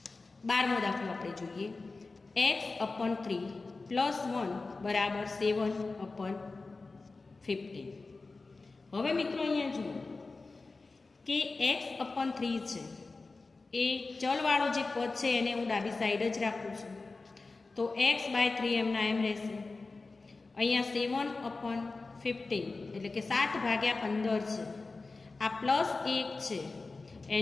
12મો દાખલો આપણે જોઈએ. x/3 + 1 બરાબર 7/15. હવે મિત્રો અહીંયા જુઓ કે x/3 છે એ ચલવાળો જે પદ છે એને હું ડાબી સાઈડ જ રાખું છું. તો x/3 એમના એમ રહેશે. અહીંયા 7/15 એટલે કે 7/15 છે. આ +1 છે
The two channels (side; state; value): right; quieter; 3.7 dB